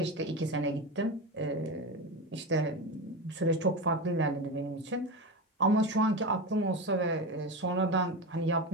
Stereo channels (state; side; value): normal; both; correlation 0.21